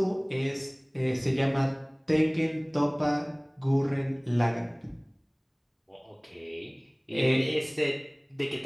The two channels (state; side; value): identical; both; correlation 1.00